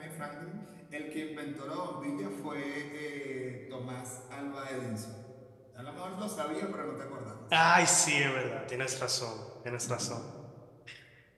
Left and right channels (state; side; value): identical; both; correlation 1.00